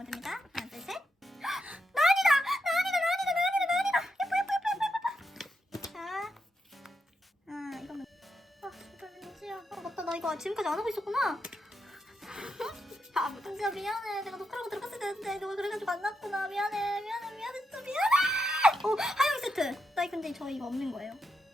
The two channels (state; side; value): normal; both; correlation 0.84